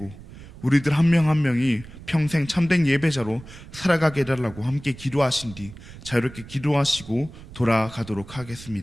우리들 한 명 한 명이 평생 참된 예배자로 살아가게 해달라고 함께 기도하신 뒤 자유롭게 기도하시고 돌아가도록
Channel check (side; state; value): right; noise; rumble, 17 dB below the sound